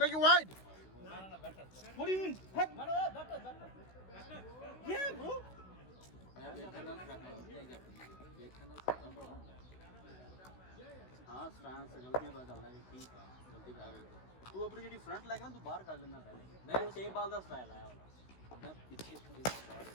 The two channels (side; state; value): right; late; 16 ms